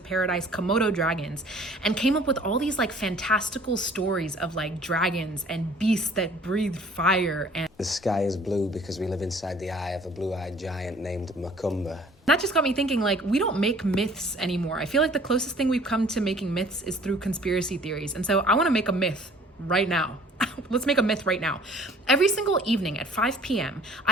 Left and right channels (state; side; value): normal; both; correlation 0.53